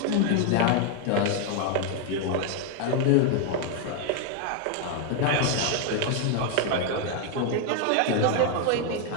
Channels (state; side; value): different; both; correlation 0.01